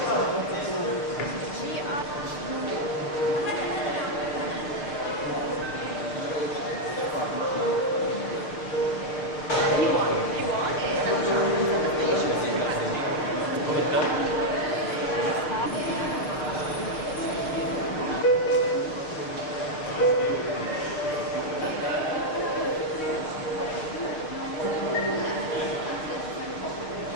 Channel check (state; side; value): late; right; 6.6 ms